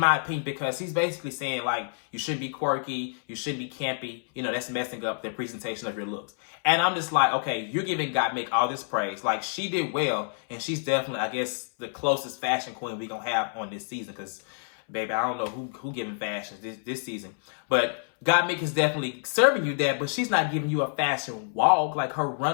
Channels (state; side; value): silent; right; 59 dB below the other